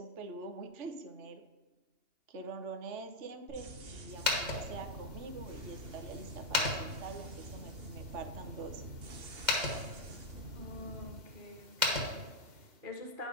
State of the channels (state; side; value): late; left; 2.8 ms